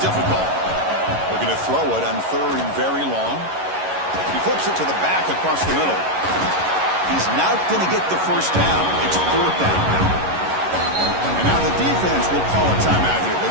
Looking to throw it on 3rd and very long. He flips it to the back across the middle. He's not going to get the 1st down. It's 4th down. And now the defense will call a timeout here.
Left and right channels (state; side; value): late; left; 11 ms